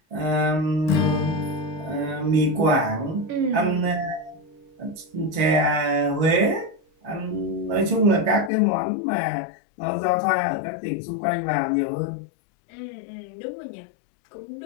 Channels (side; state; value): right; drops out; at 8.5 s